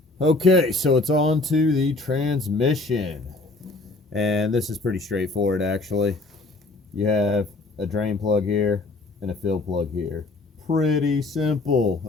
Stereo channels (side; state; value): right; quieter; 3.2 dB